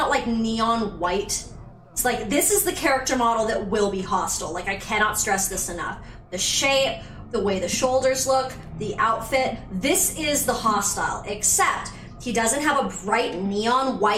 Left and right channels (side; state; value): both; identical; correlation 1.00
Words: like neon white? It's like, this is the character model that will be hostile. Like, I cannot stress this enough. The shape, the way the shoulders look, the outfit, this is the hostile, except he doesn't have a bright neon